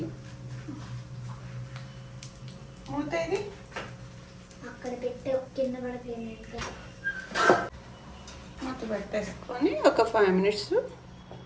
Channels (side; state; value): both; identical; correlation 1.00